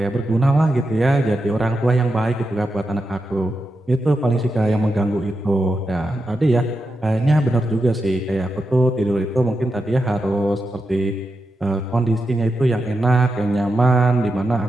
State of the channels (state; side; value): normal; both; correlation 0.88